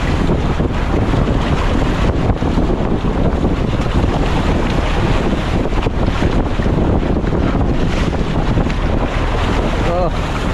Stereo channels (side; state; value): both; identical; correlation 1.00